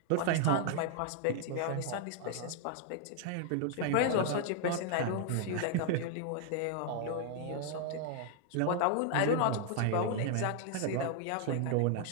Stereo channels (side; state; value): both; different; correlation 0.00